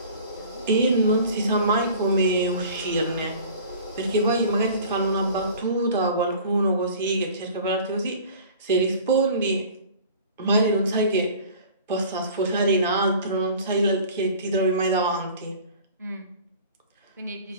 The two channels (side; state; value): both; inverted; correlation -0.44